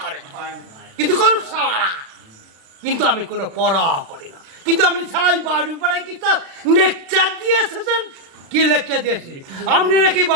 করে কিন্তু করুক সারা, কিন্তু আমি কোনো পড়া করি না। কিন্তু আপনি সারাই বাড়ি পাড়ায় কি স্যার লেকচার দিয়ে এসেছেন? কি লেকচার দিয়েছি? আপনি নাকি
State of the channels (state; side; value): late; left; 36 ms